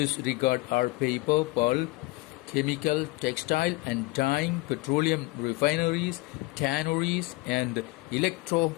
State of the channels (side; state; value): right; quieter; 22.1 dB